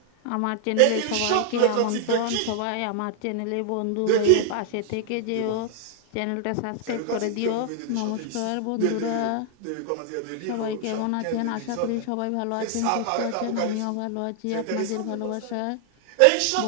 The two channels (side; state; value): both; different; correlation 0.00